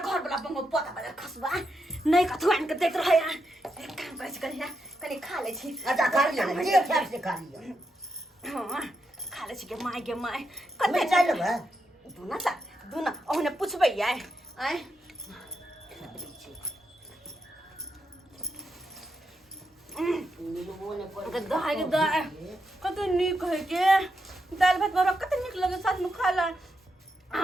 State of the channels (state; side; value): normal; both; correlation 0.84